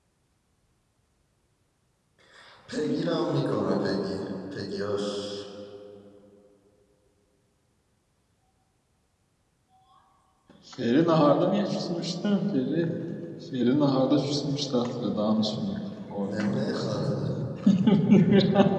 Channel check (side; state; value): both; identical; correlation 1.00